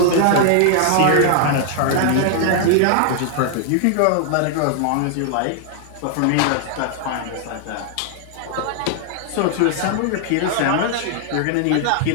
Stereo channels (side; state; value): both; different; correlation 0.00